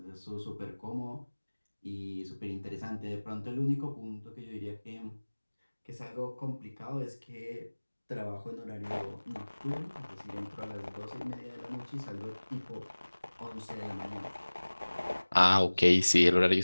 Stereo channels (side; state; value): both; inverted; correlation -1.00